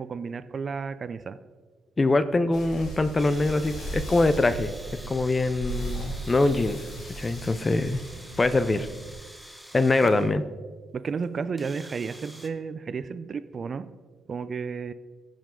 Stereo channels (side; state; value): both; normal; correlation 0.90